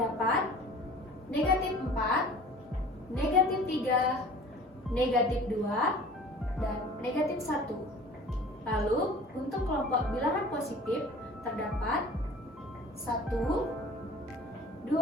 negatif 4, negatif 3, negatif 2, dan negatif 1. Lalu, untuk kelompok bilangan positif terdapat 1,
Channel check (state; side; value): normal; both; correlation 0.45